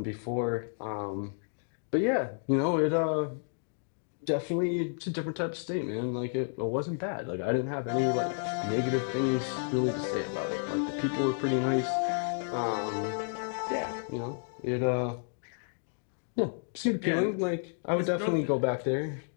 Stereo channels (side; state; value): right; silent; digital silence